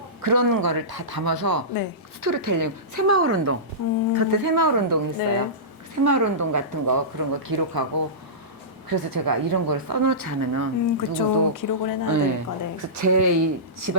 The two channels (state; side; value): normal; both; correlation -0.19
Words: 그런 거를 다 담아서 네. 스토리텔링 새마을 운동 그때 새마을 운동 했어요. 네. 새마을 운동 같은 거 그런 거 기록하고 그래서 제가 이런 걸 써놓지 않으면 그쵸. 누구도 기록을 해놔야 네. 되니까. 네. 그래서 제 이